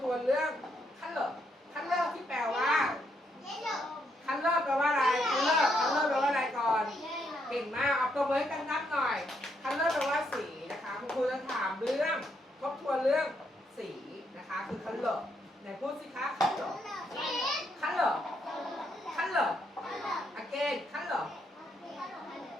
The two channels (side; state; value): both; normal; correlation 0.76